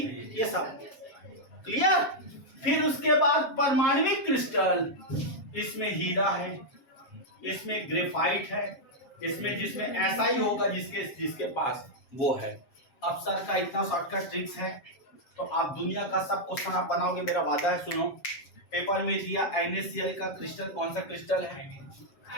ये सब क्लियर। फिर उसके बाद परमाणविक क्रिस्टल, इसमें हीरा है, इसमें ग्रेफाइट है, इसमें जिसमें ऐसा ही होगा जिसके पास वो है। अब सर का इतना शॉर्टकट ट्रिक्स है तो आप दुनिया का सब क्वेश्चन आप बनाओगे, मेरा वादा है। सुनो, पेपर में दिया NaCl का क्रिस्टल कौन सा क्रिस्टल है?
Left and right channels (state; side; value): late; right; 7.5 ms